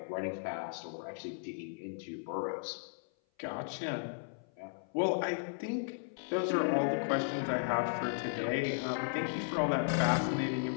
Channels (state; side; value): silent; right; 54 dB below the other